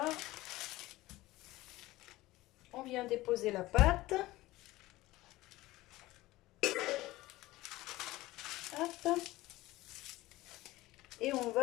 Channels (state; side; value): quieter; right; 18.1 dB